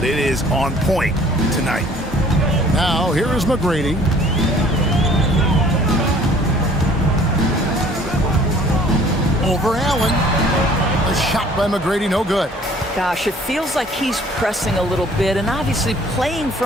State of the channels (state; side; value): normal; both; correlation 0.54